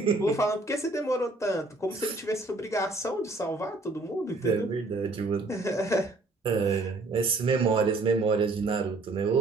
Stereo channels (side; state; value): left; quieter; 3.2 dB